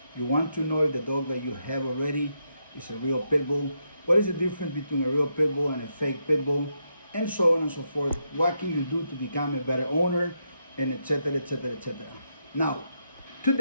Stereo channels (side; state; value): both; inverted; correlation -0.82